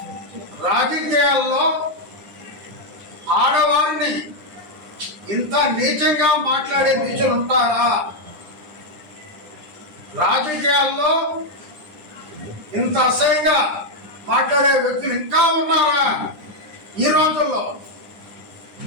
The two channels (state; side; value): late; left; 9.9 ms